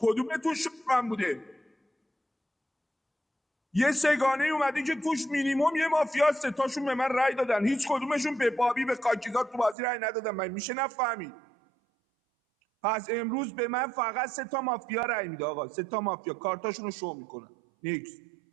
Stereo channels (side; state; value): left; drops out; at 9.8 s